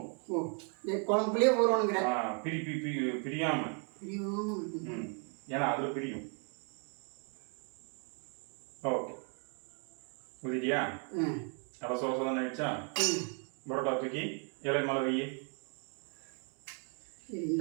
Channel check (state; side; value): quieter; left; 40.0 dB